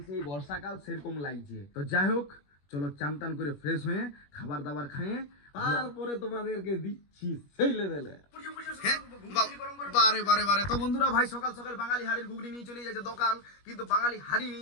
সেই বর্ষাকাল সেরকম লাগছে। তো যাই হোক, চলো চান টান করে ফ্রেশ হয়ে খাবার দাবার খাইয়ে তারপরে তোমাদেরকে দিচ্ছি সেই লেভেলে। বারে বারে বারে। তো বন্ধুরা ভাই সকাল সকাল বাঙালি হাড়ির ঘুগনি নিয়ে চলে যাচ্ছে দোকান, কিন্তু বাঙালি হাড়ি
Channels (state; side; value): late; right; 21 ms